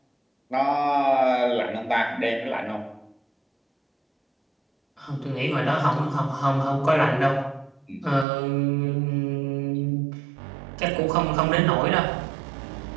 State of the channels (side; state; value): left; drops out; at 8.2 s